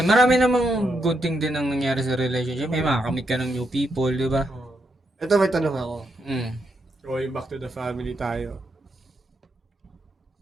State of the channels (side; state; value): both; normal; correlation 0.81